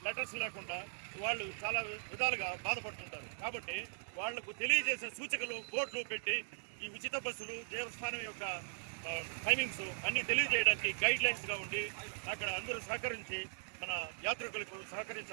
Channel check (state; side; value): silent; left; digital silence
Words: లెటర్స్ లేకుండా వాళ్ళు చాలా విధాలుగా బాధపడుతుంటారు. కాబట్టి వాళ్లకు తెలియజేసే సూచికలు బోర్డులు పెట్టి ఈ ఉచిత బస్సులు దేవస్థానం యొక్క టైమింగ్స్ అన్నీ తెలియజేయడానికి గైడ్ లైన్స్గా ఉండి అక్కడ అందరూ సహకరించి మన యాత్రికులకు